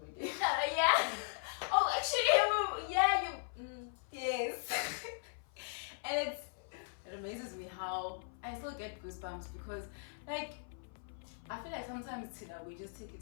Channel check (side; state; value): right; silent; 52 dB below the other